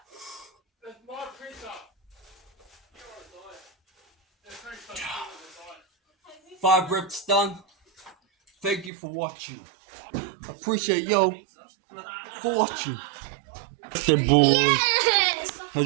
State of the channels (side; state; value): left; drops out; at 8.9 s